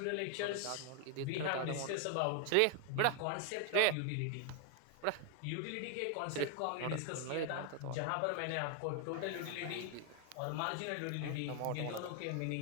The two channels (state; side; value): different; both; correlation 0.00